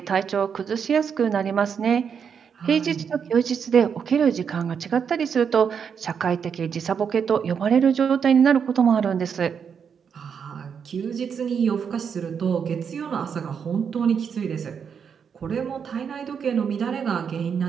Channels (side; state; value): left; quieter; 7.0 dB